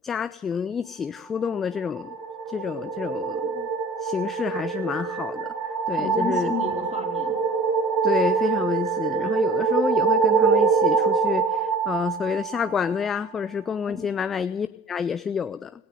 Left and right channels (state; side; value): normal; both; correlation 0.47